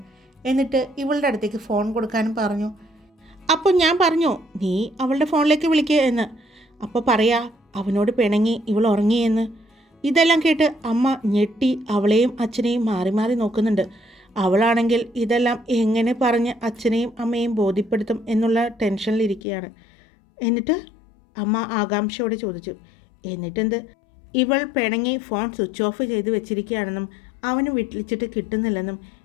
എന്നിട്ട് ഇവളുടെ അടുത്തേക്ക് ഫോൺ കൊടുക്കാനും പറഞ്ഞു. അപ്പോൾ ഞാൻ പറഞ്ഞു, നീ അവളുടെ ഫോണിലേക്ക് വിളിക്കുക എന്ന്. അപ്പോൾ പറയാ അവനോട് പിണങ്ങി ഇവൾ ഉറങ്ങിയെന്ന്. ഇതെല്ലാം കേട്ട് അമ്മ ഞെട്ടി അവളെയും അച്ഛനെയും മാറി മാറി നോക്കുന്നുണ്ട്. അവളാണെങ്കിൽ ഇതെല്ലാം എങ്ങനെ പറഞ്ഞ് അച്ഛനെയും അമ്മയെയും ബോധ്യപ്പെടുത്തും എന്നുള്ള ടെൻഷനിലിരിക്കുകയാണ്. എന്നിട്ട് അമ്മ ആകാംക്ഷയോടെ ചോദിച്ചു, എന്നിട്ടെന്ത്? ഇവൾ പിണങ്ങി ഫോൺ സ്വിച്ച് ഓഫ് ചെയ്ത് വെച്ചിരിക്കുകയാണെന്നും അവന് വിളിച്ചിട്ട് കിട്ടുന്നില്ലെന്നും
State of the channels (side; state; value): right; drops out; at 19.4 s